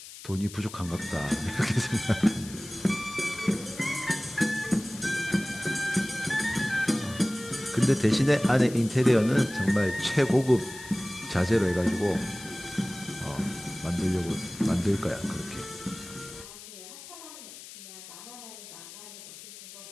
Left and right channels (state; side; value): noise; left; hiss, 15 dB below the sound